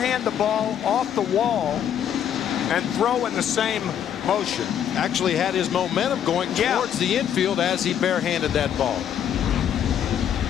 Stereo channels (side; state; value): right; quieter; 9.4 dB